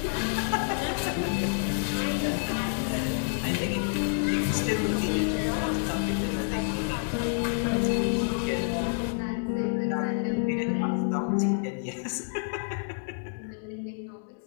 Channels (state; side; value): silent; right; digital silence